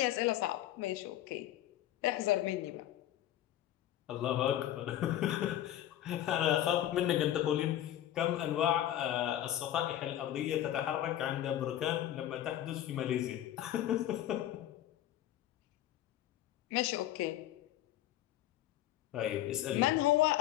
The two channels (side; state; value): right; quieter; 12.6 dB